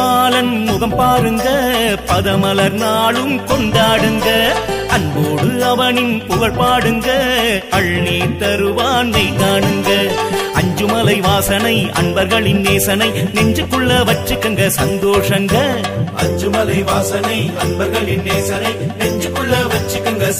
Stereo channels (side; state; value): both; identical; correlation 1.00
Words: முகம் பாருங்க பதமலர் நாளும் கொண்டாடுங்க. அன்போடு அவனின் புகழ் பாடுங்க அள்ளி தருவானை காணுங்க. அஞ்சுமலை வாசனை அன்பர்களின் நேசனை நெஞ்சுக்குள்ள வச்சுக்கங்க சந்தோஷங்க. அஞ்சுமலை வாசனை அன்பர்களின் நேசனை நெஞ்சுக்குள்ள வச்சுக்கங்க